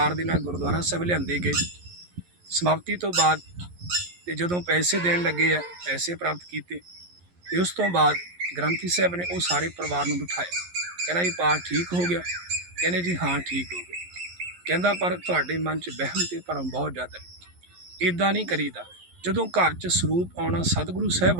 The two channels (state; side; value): late; left; 11 ms